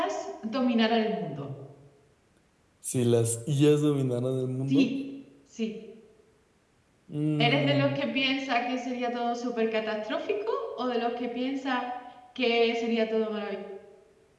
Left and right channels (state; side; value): identical; both; correlation 1.00